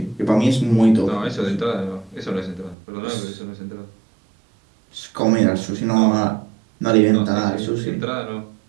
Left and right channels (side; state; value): left; drops out; at 2.8 s